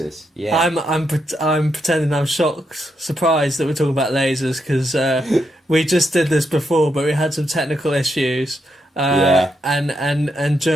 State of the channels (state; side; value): normal; both; correlation 0.81